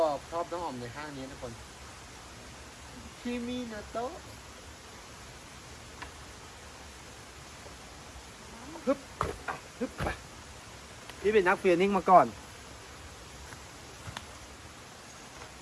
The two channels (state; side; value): identical; both; correlation 1.00